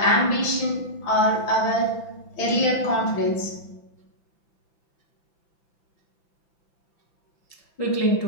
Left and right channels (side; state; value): right; late; 5.9 ms